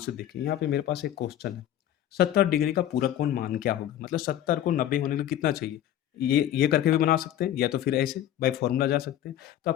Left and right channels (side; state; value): right; quieter; 11.8 dB